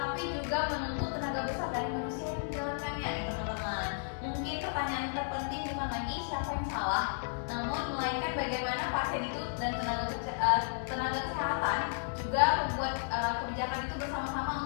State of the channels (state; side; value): silent; right; digital silence